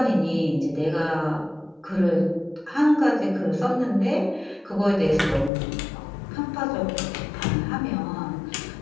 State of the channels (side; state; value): right; drops out; at 5.5 s